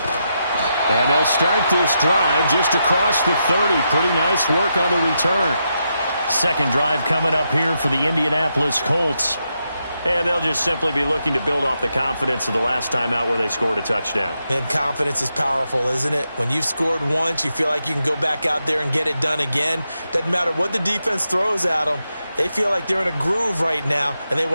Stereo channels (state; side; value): inverted; both; correlation -0.84